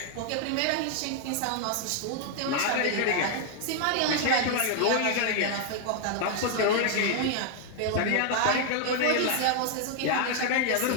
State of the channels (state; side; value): different; both; correlation 0.00